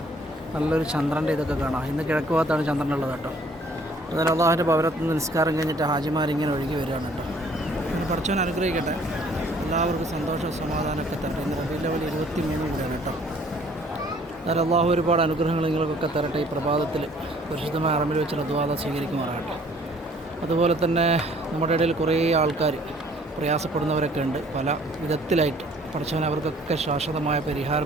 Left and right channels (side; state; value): both; normal; correlation 0.58